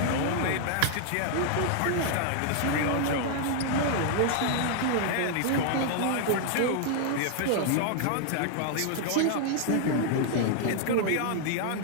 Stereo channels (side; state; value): both; different; correlation 0.00